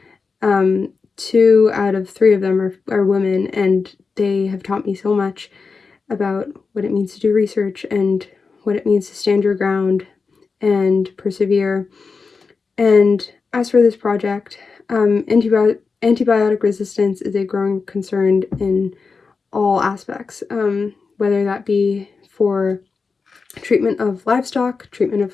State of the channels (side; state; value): right; quieter; 4.7 dB